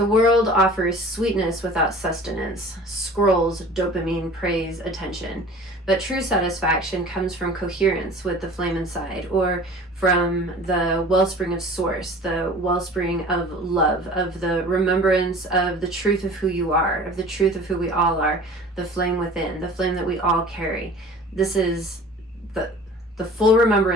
world offers sweetness without sustenance, scrolls, dopamine, praise, attention. But true satisfaction comes from coherence with the flame inside, or from the wellspring of source, the wellspring of love, of the remembrance of the truth of who you are, of the truth of who we all are, the flame within, the flame that we all carry. This is the full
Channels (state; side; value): normal; both; correlation 0.43